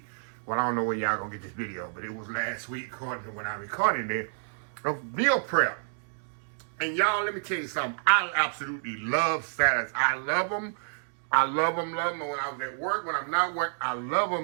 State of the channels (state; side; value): silent; left; digital silence